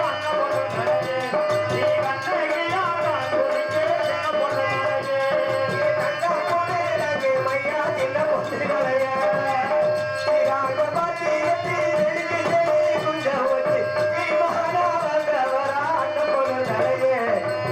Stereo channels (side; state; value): both; identical; correlation 1.00